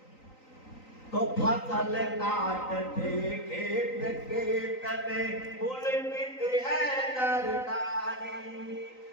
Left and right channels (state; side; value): late; right; 3.9 ms